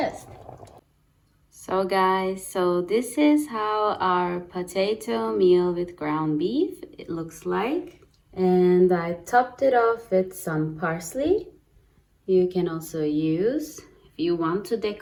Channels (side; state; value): both; identical; correlation 1.00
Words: So guys, so this is how our potato meal with ground beef it looks like. And I topped it off with some parsley. You can also use if you want to